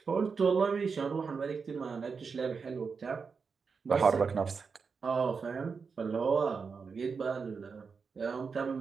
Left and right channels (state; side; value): quieter; left; 5.3 dB